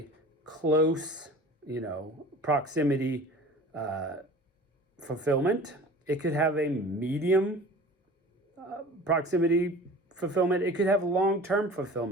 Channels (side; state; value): both; normal; correlation 0.41